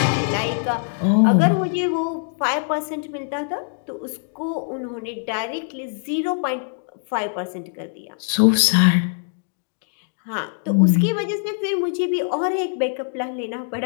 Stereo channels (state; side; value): silent; right; digital silence